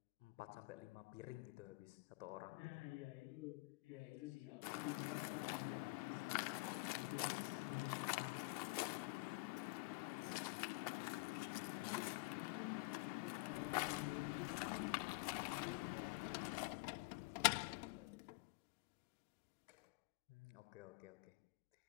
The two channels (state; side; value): quieter; right; 25.7 dB